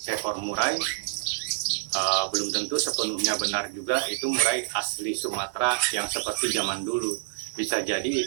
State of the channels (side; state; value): left; silent; digital silence